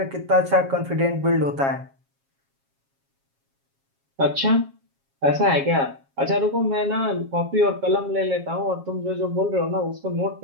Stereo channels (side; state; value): left; late; 7.3 ms